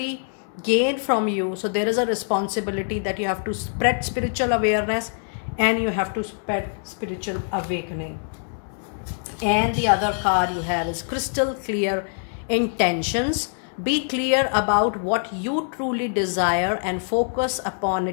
gain from you. So there is a responsibility that you have to spread spiritual awareness and you have to spread spiritual awakening. And the other card you have is crystal clear intentions. Be clear about what you truly desire and focus upon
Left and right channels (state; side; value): silent; right; 60 dB below the other